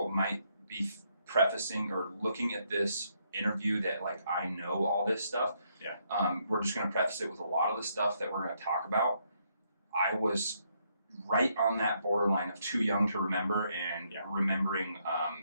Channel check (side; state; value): both; inverted; correlation -0.74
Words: might be prefacing or looking at this interview that like I know all this stuff. Yeah. We're just going to preface it with a lot of the stuff that we're going to talk about. I was right on that borderline of too young to remember and remembering